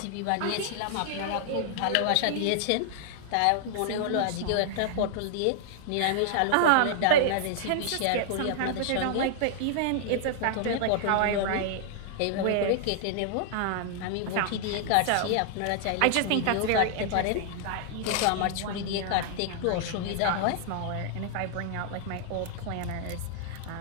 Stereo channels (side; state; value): both; different; correlation -0.01